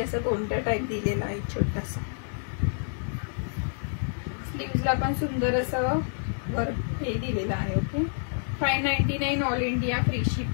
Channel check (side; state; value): right; silent; 59 dB below the other